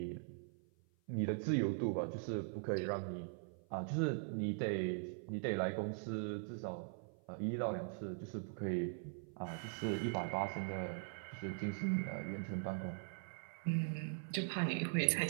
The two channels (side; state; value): left; silent; 50 dB below the other